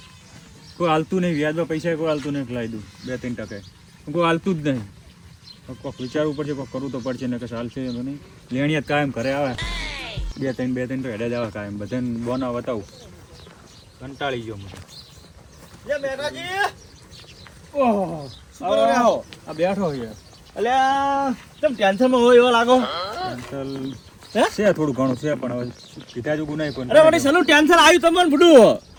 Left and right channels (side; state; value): both; identical; correlation 1.00